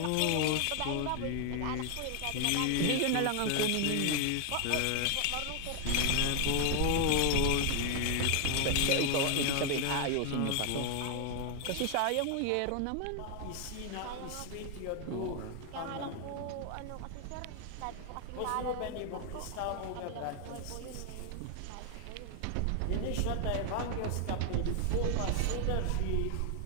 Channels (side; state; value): both; different; correlation 0.00